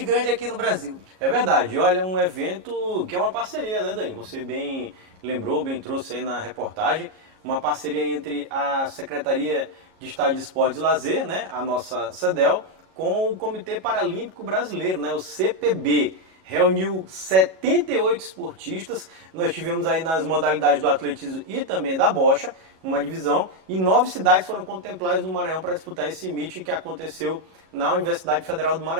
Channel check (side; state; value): left; late; 37 ms